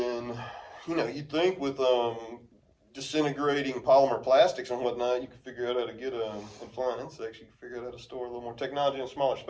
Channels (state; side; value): identical; both; correlation 1.00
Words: you'd think with disintegrating polymer plastics and whatnot, you could figure out how to get and flying insects. You could figure out how to store a little more technology in a smaller